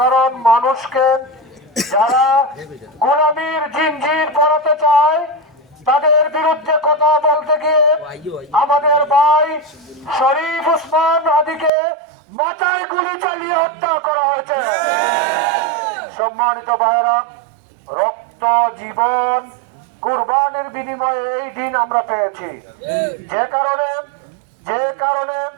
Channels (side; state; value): left; drops out; at 11.7 s